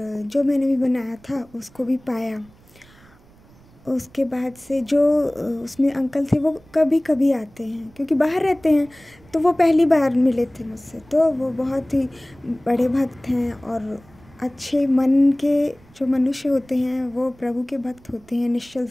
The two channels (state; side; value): noise; right; rumble, 27 dB below the sound